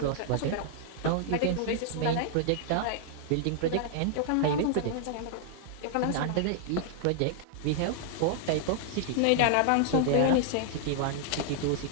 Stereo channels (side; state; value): both; different; correlation -0.01